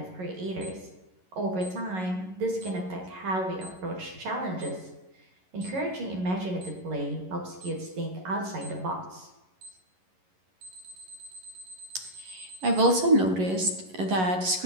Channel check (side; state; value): left; late; 11 ms